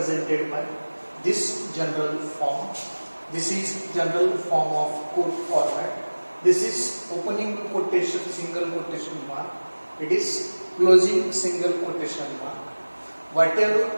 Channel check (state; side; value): inverted; both; correlation -1.00